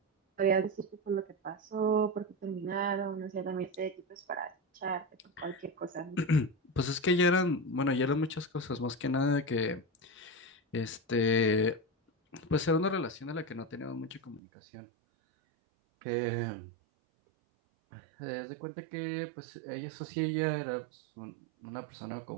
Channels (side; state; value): left; drops out; at 14.4 s